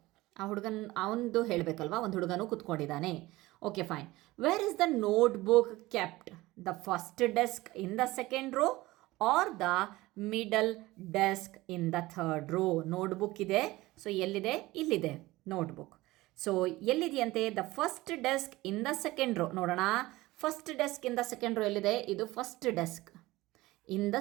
ಆ ಹುಡುಗನ ಅವನದು ಹೇಳಬೇಕಲ್ವಾ, ಒಂದು ಹುಡುಗನೂ ಕೂತ್ಕೊಂಡಿದ್ದಾನೆ. Okay, fine. Where is the notebook kept? The first desk in the second row or the middle desk in the 3rd row. Notebook ಇದೆ. So ಎಲ್ಲಿದೆ? ಇಲ್ಲಿದೆ ನೋಟ್ಬುಕ್. ಸೊ ಎಲ್ಲಿದೆಯಂತೆ? The first desk in the second row. ನೋಡೋಣ, first desk in the second row ಎಲ್ಲಿದೆ? ಇದು first desk in the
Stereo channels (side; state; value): left; quieter; 19.0 dB